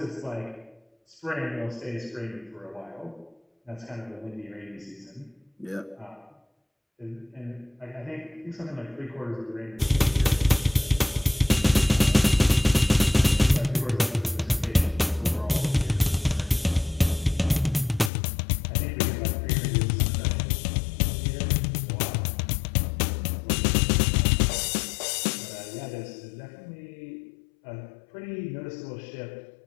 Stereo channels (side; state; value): right; drops out; at 18.1 s